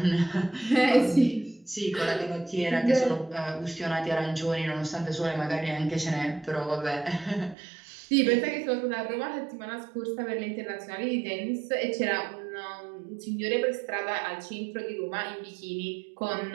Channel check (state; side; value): drops out; left; at 7.6 s